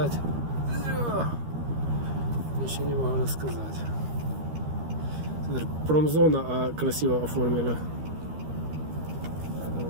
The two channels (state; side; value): late; left; 13 ms